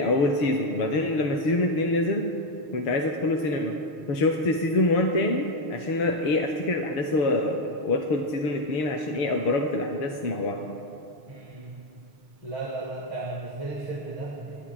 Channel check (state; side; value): late; right; 6.5 ms